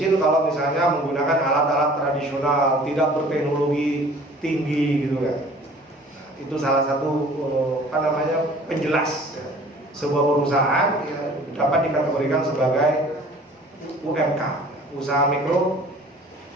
kalau misalnya menggunakan alat-alat tradisional, tidak berteknologi tinggi, gitu kan. Nah, itu salah satu penjelas. Ya. Sebuah perusahaan ya, dapat dikategorikan sebagai UMK, usaha mikro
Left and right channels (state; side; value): normal; both; correlation 0.49